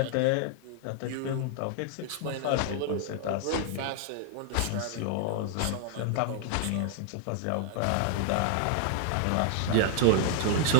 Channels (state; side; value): different; both; correlation -0.01